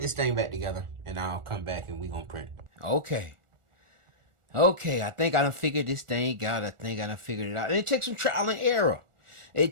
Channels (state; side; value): late; left; 1.4 ms